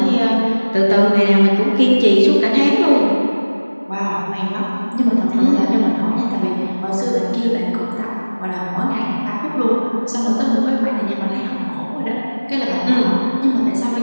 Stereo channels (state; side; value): inverted; both; correlation -1.00